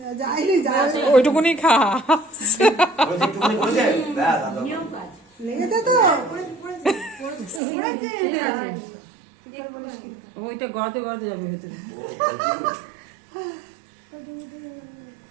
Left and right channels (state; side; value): drops out; left; at 7.6 s